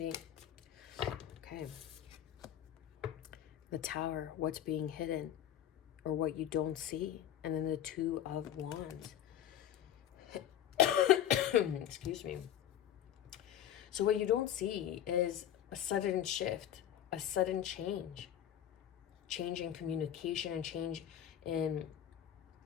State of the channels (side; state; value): right; quieter; 10.7 dB